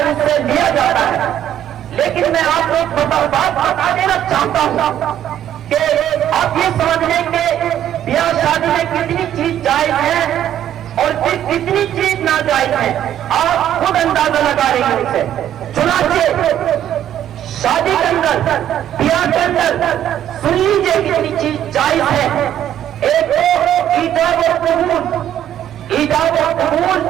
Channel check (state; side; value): quieter; left; 11.0 dB